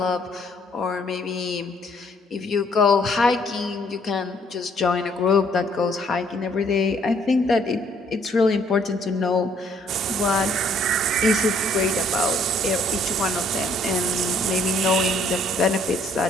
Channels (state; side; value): normal; both; correlation 0.64